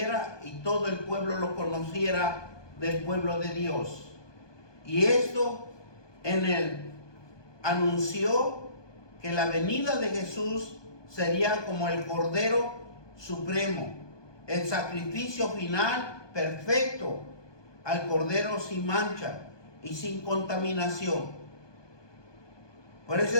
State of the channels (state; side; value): late; right; 1.2 ms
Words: y todo el pueblo lo conociera del pueblo de Dios. Y esto anunció que la venida de Jesús sería como el Cordero Supremo, el sacrificio final perfecto al Cordero sin mancha y sin contaminación. Por eso